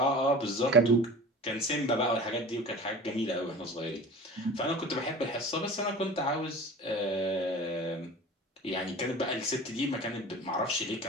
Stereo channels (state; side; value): normal; both; correlation 0.38